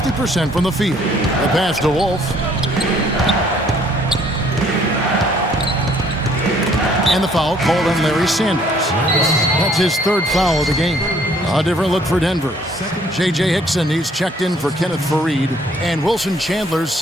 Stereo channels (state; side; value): normal; both; correlation 0.62